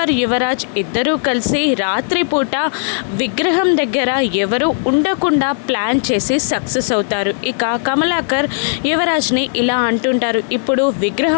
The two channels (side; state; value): right; silent; digital silence